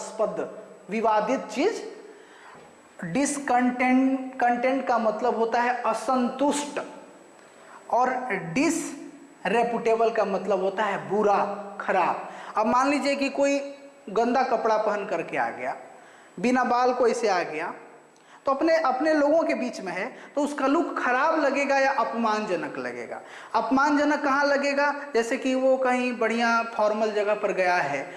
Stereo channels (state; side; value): identical; both; correlation 1.00